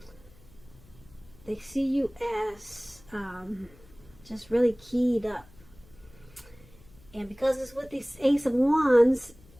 they see you as just really keyed up. And because it's with this Ace of Wands,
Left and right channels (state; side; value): noise; left; hum, 25 dB below the sound